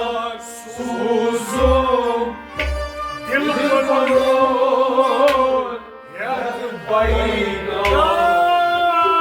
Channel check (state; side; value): identical; both; correlation 1.00